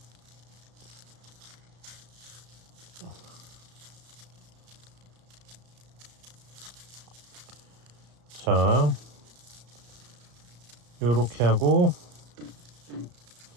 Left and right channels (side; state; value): left; late; 34 ms